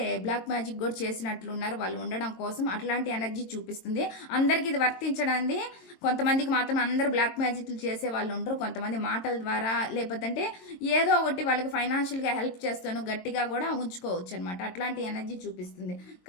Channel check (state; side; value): late; right; 22 ms